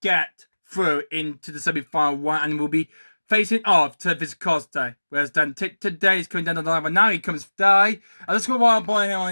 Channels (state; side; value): inverted; both; correlation -1.00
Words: get through into the semi-final one, and we'll be facing off to Costa. Whereas Dan today is coming down the line, but now he comes die. And let's go while I'm pulling him on